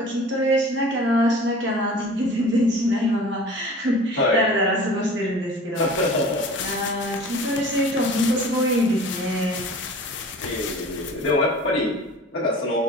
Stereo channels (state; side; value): normal; both; correlation 0.43